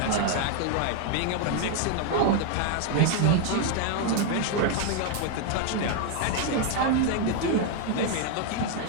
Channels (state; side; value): different; both; correlation 0.00